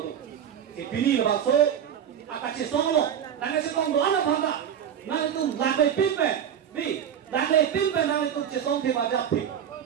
si pini la so akache songlo nanga se kong do ana bhanga na itu lakai pipe ni Lagle pimpe nang itu cesong te majap te.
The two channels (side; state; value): left; quieter; 9.0 dB